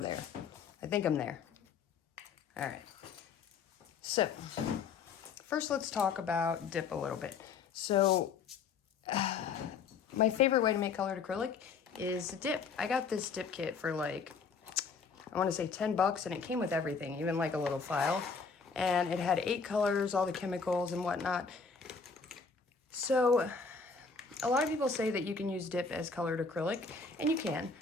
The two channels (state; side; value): quieter; right; 5.3 dB